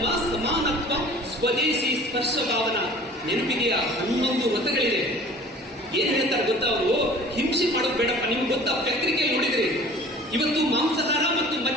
ಸಮಾನತ್ವ, ಸ್ವದೇಶಿ ಸ್ಪರ್ಶ ಭಾವನ. ನೆನಪಿಗೆಯ 11 ವ್ರತಗಳಿದೆ. ಏನ್ ಹೇಳ್ತಾರೆ ಗೊತ್ತಾ ಅವರು? ಹಿಂಸೆ ಮಾಡೋದು ಬೇಡಪ್ಪ. ನಿಮ್ಗೆ ಗೊತ್ತಾ, ಪತ್ರಿಕೆಯಲ್ಲಿ ನೋಡಿದ್ರಿ, ಇವತ್ತು ಮಾಂಸಾಹಾರ ಮತ್ತು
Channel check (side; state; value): both; normal; correlation 0.46